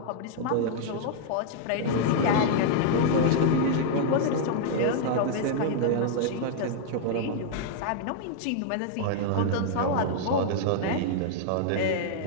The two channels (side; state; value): both; different; correlation -0.01